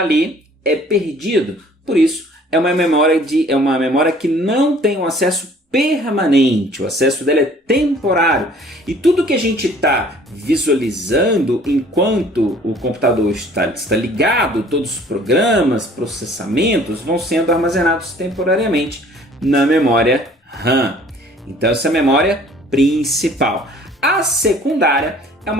ali é perdido. Por isso, é uma memória que não tem um acesso permanente, o acesso dela é temporário. E tudo que a gente está visualizando enquanto o computador está ligado, todos os programas, processamentos vão sendo armazenados temporariamente na memória RAM. Então essa é a memória principal. A secundária é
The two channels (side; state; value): both; normal; correlation 0.53